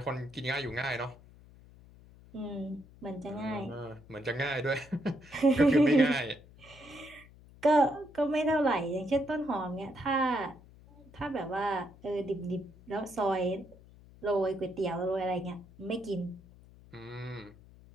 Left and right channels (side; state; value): left; noise; hum, 23 dB below the sound